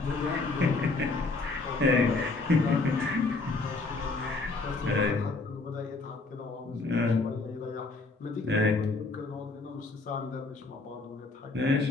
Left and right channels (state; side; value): quieter; right; 3.6 dB